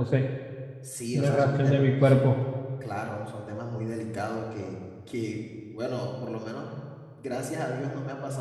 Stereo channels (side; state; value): both; identical; correlation 1.00